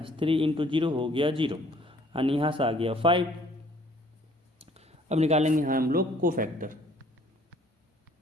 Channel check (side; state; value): both; normal; correlation 0.59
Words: 3 इंटू 0 हो गया 0, यानी यहाँ से आ गया 5। अब निकालेंगे यहाँ हम लोग कोफैक्टर,